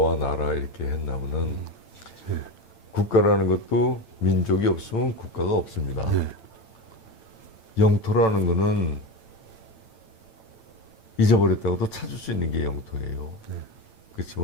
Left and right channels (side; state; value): right; late; 9.0 ms